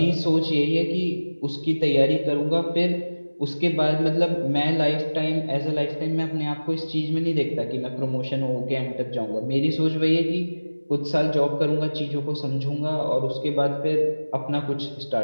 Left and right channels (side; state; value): both; inverted; correlation -1.00